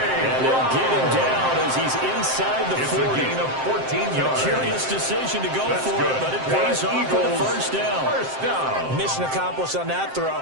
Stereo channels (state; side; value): late; left; 7.6 ms